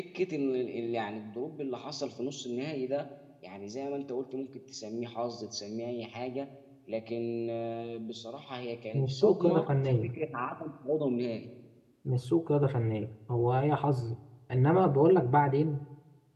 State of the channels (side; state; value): both; identical; correlation 1.00